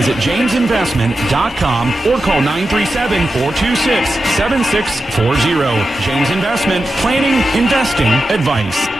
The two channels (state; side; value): normal; both; correlation 0.91